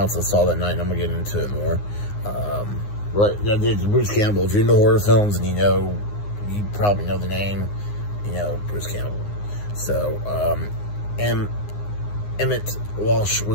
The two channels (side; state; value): right; late; 9.7 ms